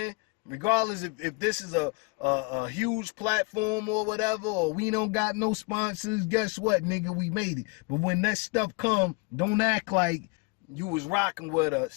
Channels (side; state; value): right; quieter; 28.7 dB